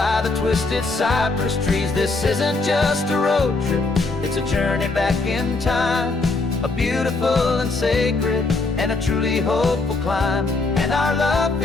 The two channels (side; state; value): right; quieter; 3.5 dB